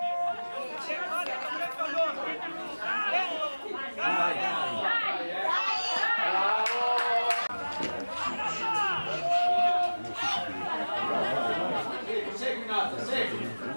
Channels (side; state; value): both; inverted; correlation -1.00